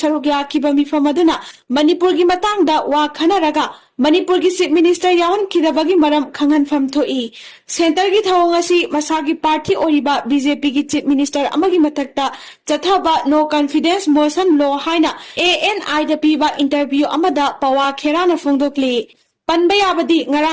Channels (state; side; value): identical; both; correlation 1.00